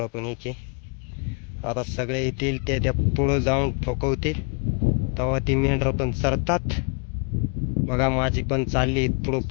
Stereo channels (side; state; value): right; quieter; 37.3 dB